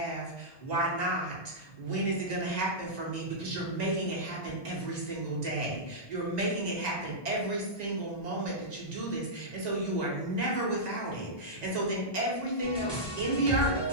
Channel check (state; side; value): late; right; 1.2 ms